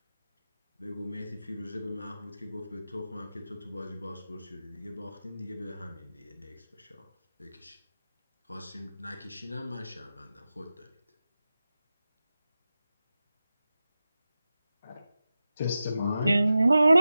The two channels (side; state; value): both; inverted; correlation -0.93